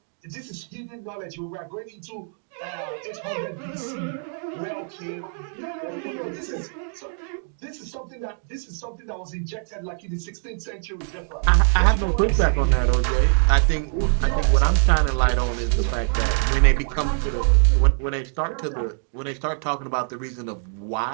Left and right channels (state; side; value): silent; left; 57 dB below the other